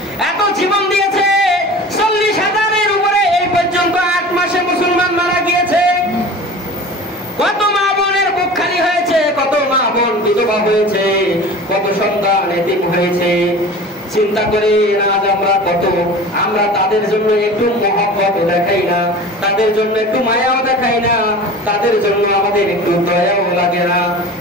এত জীবন দিয়েছে। 40,000-এর উপরে এই পর্যন্ত 8 মাসে মুসলমান মারা গিয়েছে। কত মা বোনের বুক খালি হয়েছে, কত মা বোন বিধবা হয়েছে, কত সন্তান এতিম হয়েছে। চিন্তা করে আজ আমরা তাদের জন্য একটু মহব্বত দেখাই না, তাদের জন্য একটু মায়াও দেখাই না, তাদের জন্য আমাদের একটু দয়াও লাগে না।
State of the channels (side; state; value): both; normal; correlation 0.37